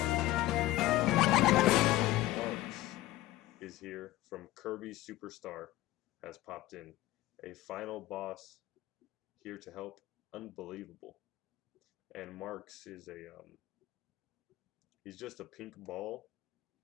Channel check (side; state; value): right; quieter; 16.4 dB